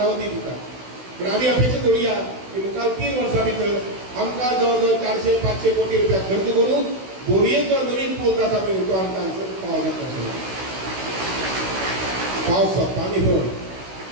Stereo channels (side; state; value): left; late; 16 ms